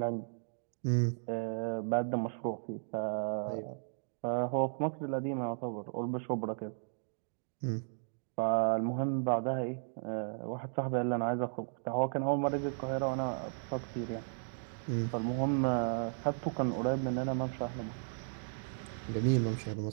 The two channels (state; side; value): silent; left; digital silence